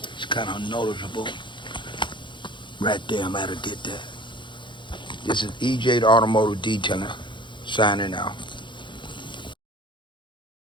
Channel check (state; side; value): late; right; 0.23 ms